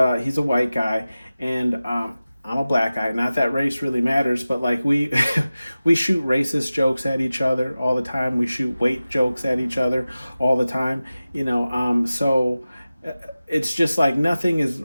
white guy, and I'm a black guy. Not that race really matters, but like we shoot racist jokes at each other all the time. We shoot weight jokes at each other all the time. So it's just like nothing is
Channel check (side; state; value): both; inverted; correlation -0.96